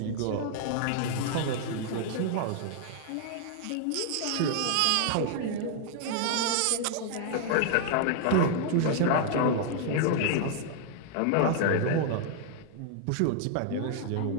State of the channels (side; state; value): both; different; correlation 0.00